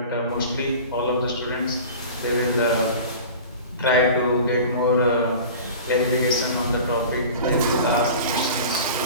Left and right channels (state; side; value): inverted; both; correlation -0.38